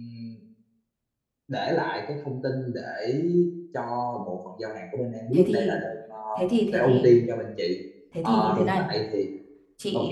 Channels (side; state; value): both; identical; correlation 1.00